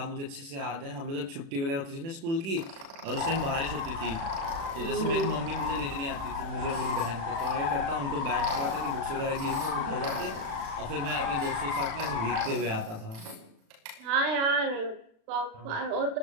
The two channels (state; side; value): late; left; 36 ms